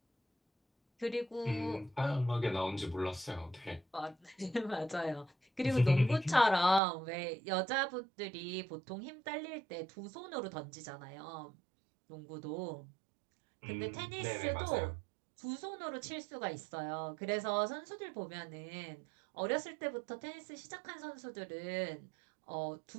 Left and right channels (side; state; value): left; drops out; at 6.8 s